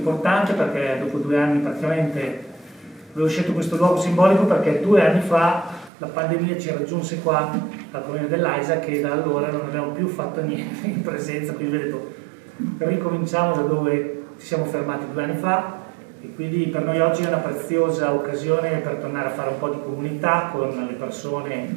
perché dopo 2 anni praticamente avevo scelto questo luogo simbolico perché 2 anni fa la pandemia ci raggiunse qua al comune dell'Aisa che da allora non abbiamo più fatto niente in presenza, quindi ho detto ricominciamo da dove ci siamo fermati 2 anni fa e quindi per noi oggi è una preziosa occasione per tornare a fare un po' di comunità con le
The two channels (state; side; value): drops out; left; at 5.9 s